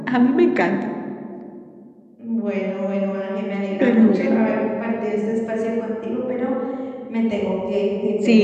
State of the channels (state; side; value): identical; both; correlation 1.00